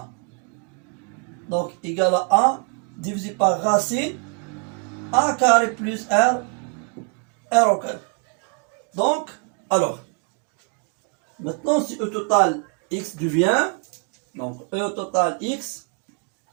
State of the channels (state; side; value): quieter; left; 33.8 dB